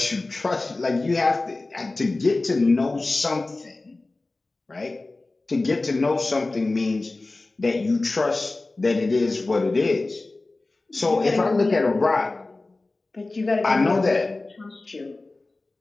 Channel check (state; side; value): quieter; right; 3.2 dB